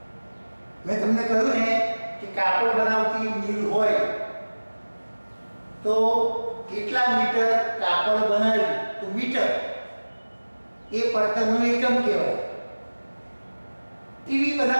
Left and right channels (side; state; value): both; inverted; correlation -1.00